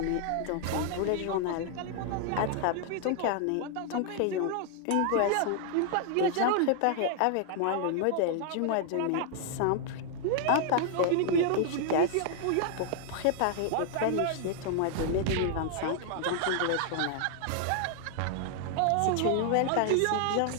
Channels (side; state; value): both; different; correlation 0.00